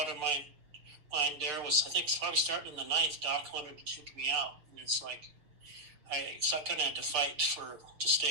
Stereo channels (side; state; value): left; late; 6.9 ms